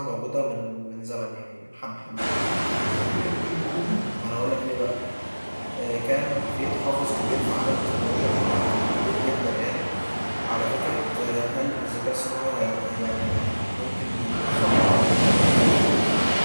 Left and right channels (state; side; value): inverted; both; correlation -1.00